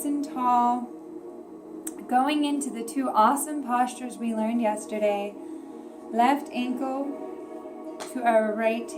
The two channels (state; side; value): identical; both; correlation 1.00